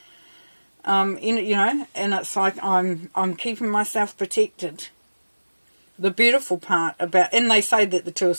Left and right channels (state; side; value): inverted; both; correlation -1.00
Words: And it's like I'm keeping myself protected. The beautiful part about, and they say that the Two of